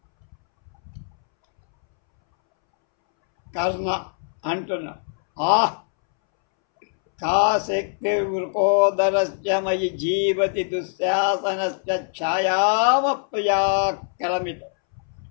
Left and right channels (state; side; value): silent; right; 64 dB below the other